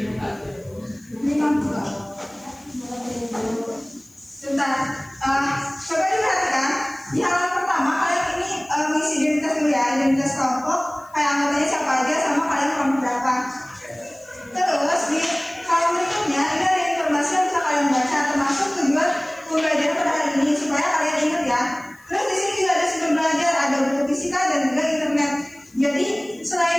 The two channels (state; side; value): noise; left; hiss, 28 dB below the sound